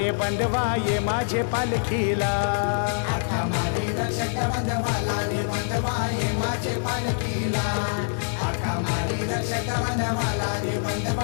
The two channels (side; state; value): right; silent; digital silence